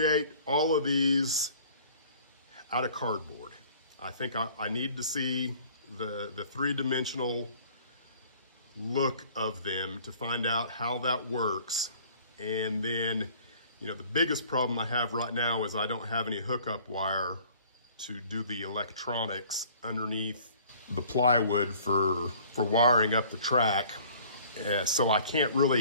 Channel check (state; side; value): inverted; both; correlation -0.52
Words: all of these out of cardboard. I think I need to see the 3-dimensional look of them to find out how that works. And then, you know, the biggest problem I have right now is I don't have any hookup wire to do the electronics underneath the plywood for wiring up the track. So I can't